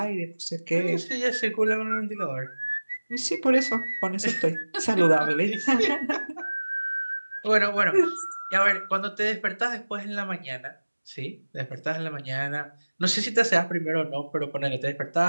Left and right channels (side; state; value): both; inverted; correlation -1.00